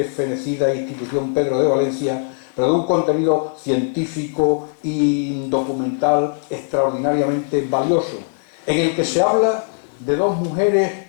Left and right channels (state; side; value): silent; right; digital silence